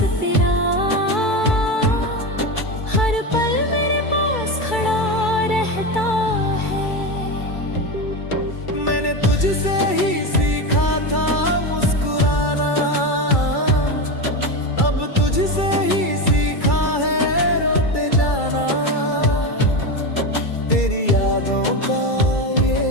मैंने तुझसे ही सीखा था मुस्कुराना, अब तुझसे ही सीखा है रोते जाना। तेरी यादों का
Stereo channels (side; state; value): right; late; 2.3 ms